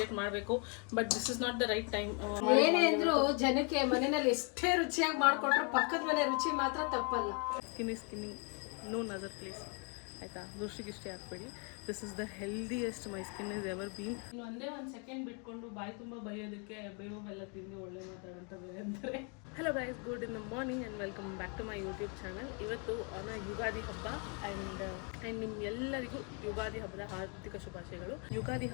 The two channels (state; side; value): quieter; right; 35.3 dB